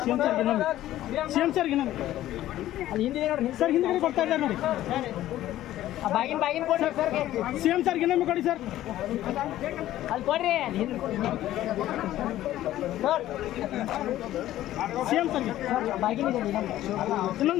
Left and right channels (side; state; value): right; quieter; 13.9 dB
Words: ಸಿಎಂ ಸರ್ ಇನ್ನೊಮ್ಮೆ ಅಲ್ಲಿ ಹಿಂದೆ ನೋಡಿ ಸರ್ ಹಿಂದೆ ಕೊಡ್ತಾ ಇದ್ದಾರೆ ನೋಡಿ ಬಾಗಿನ ಕೊಡಿ ಸರ್ ಸಿಎಂ ಸರ್ ಇನ್ನೊಮ್ಮೆ ಕೊಡಿ ಸರ್ ಅಲ್ಲಿ ಕೊಡ್ರಿ ಸರ್ ಸಿಎಂ ಸರ್ಗೆ ಬಾಗಿನ